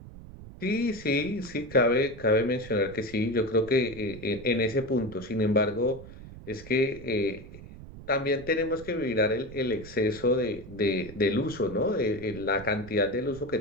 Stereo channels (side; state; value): right; noise; rumble, 16 dB below the sound